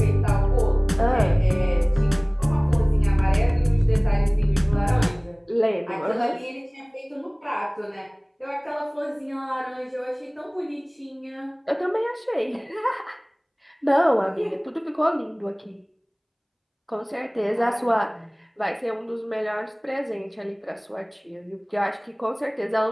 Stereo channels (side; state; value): both; identical; correlation 1.00